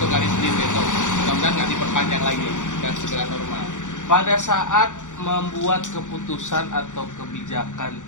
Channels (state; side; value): late; right; 0.86 ms